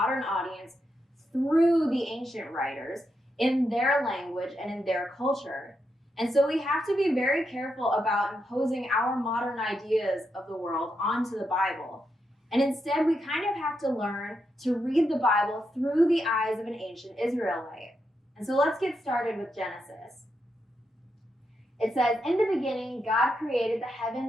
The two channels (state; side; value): normal; both; correlation 0.83